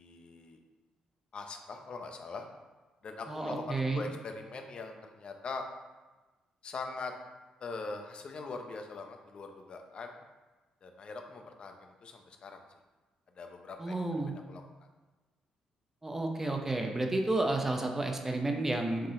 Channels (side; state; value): both; normal; correlation 0.85